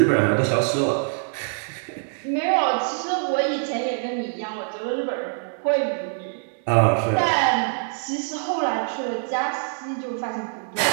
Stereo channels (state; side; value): silent; left; digital silence